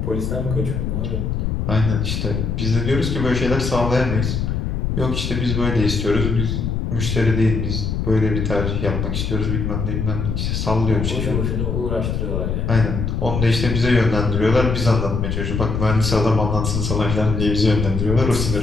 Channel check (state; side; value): noise; left; rumble, 1 dB below the sound